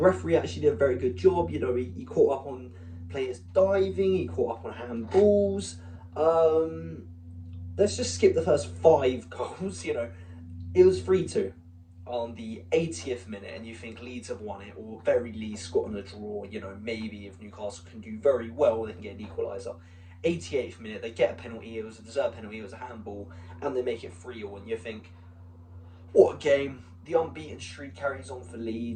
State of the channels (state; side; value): identical; both; correlation 1.00